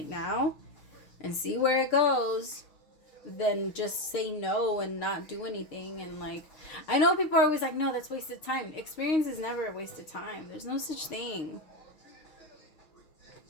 now and see where it goes than just say no and not do anything. And like, I know people are always like, no, that's wasted time. Experience is never a wasted time. There's no such thing.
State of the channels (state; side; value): late; right; 6.6 ms